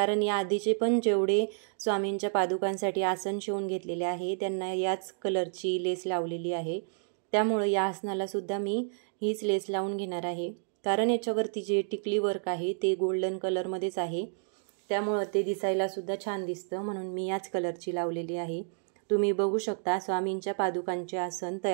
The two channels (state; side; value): silent; left; digital silence